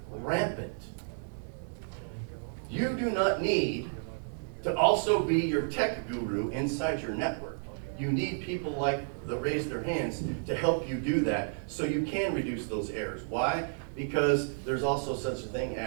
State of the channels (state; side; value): silent; left; 57 dB below the other